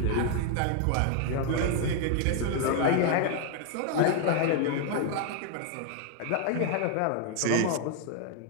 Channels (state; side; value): different; both; correlation 0.00